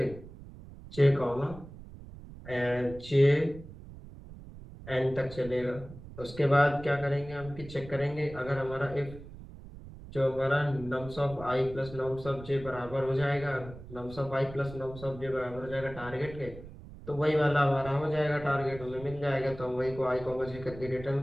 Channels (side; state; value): right; noise; rumble, 15 dB below the sound